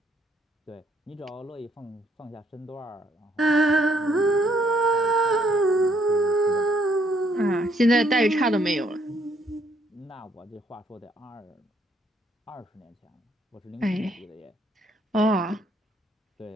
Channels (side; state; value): both; normal; correlation 0.69